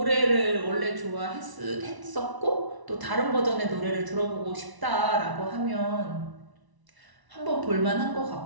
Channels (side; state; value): left; late; 1.0 ms